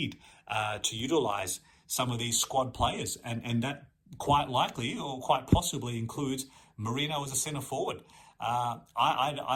to utilise some of these squad players, and that quite likely or quite possibly includes Merino as a centre forward.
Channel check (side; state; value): both; identical; correlation 1.00